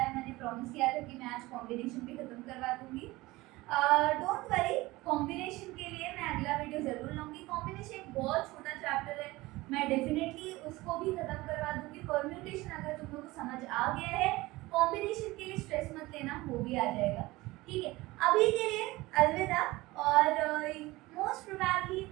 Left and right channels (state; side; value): quieter; left; 20.1 dB